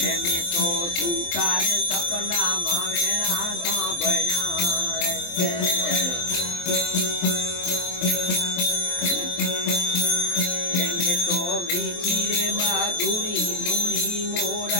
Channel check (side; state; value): right; late; 23 ms